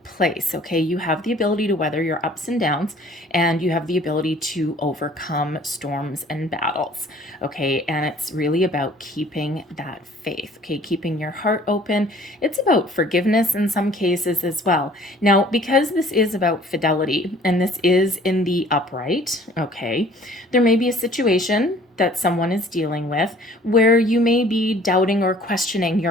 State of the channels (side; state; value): both; normal; correlation 0.53